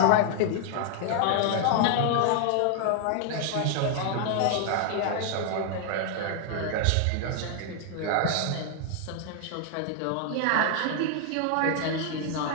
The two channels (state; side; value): different; both; correlation 0.00